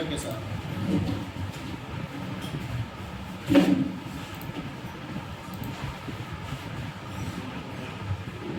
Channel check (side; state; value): both; identical; correlation 1.00